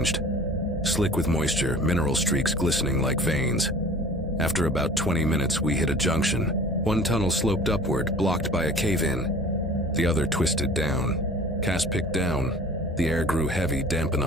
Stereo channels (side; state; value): both; normal; correlation 0.45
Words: Slick with moisture, mineral streaks glistening like veins. After about 20 minutes, we hit a junction. One tunnel sloped upward, blocked by a cave-in. The other twisted down. Cass picked down. The air grew heavy, damp